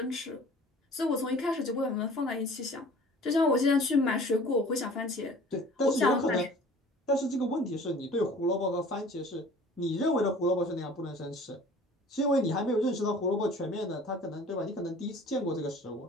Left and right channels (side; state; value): both; normal; correlation 0.47